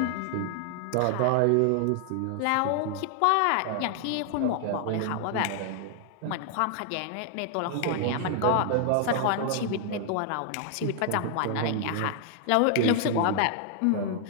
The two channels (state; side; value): different; both; correlation 0.00